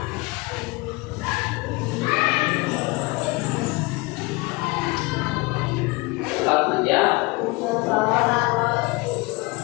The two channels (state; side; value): quieter; right; 24.3 dB